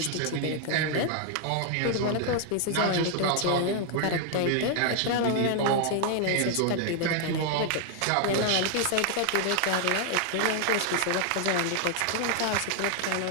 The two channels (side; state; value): both; different; correlation 0.00